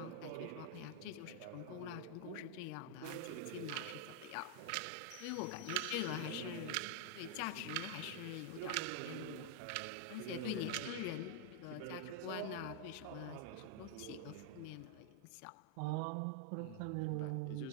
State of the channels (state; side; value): different; both; correlation 0.00